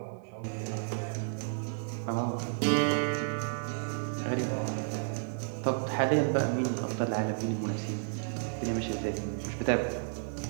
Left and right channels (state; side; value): silent; left; digital silence